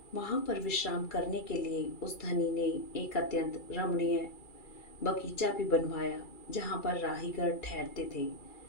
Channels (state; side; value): late; right; 2.4 ms